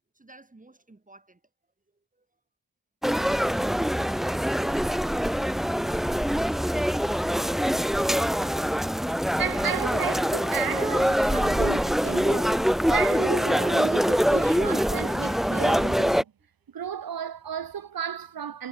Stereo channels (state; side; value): normal; both; correlation 0.91